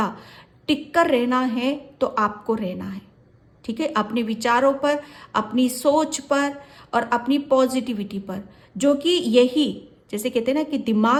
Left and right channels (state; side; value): identical; both; correlation 1.00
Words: टिक कर रहना है तो आपको रहना है, ठीक है, अपने विचारों पर, अपनी सोच पर और अपनी पॉजिटिविटी पर, जो कि यही जैसे कहते हैं ना कि